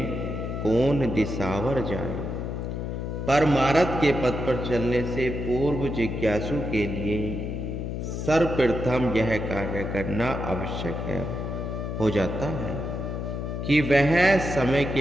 कौन दिसावर जाए। परमार्थ के पथ पर चलने से पूर्व जिज्ञासु के लिए सर्वप्रथम यह कार्य करना आवश्यक है हो जाता है कि वह समय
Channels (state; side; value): noise; left; hum, 4 dB below the sound